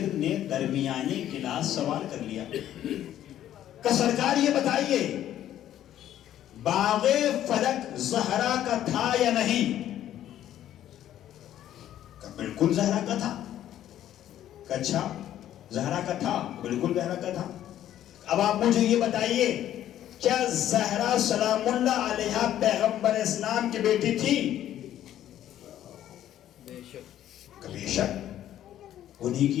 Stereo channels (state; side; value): quieter; right; 11.8 dB